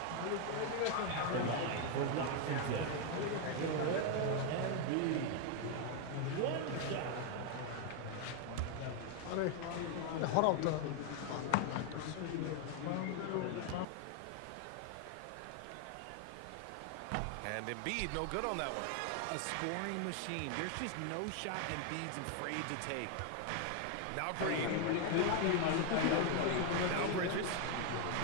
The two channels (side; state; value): both; different; correlation 0.00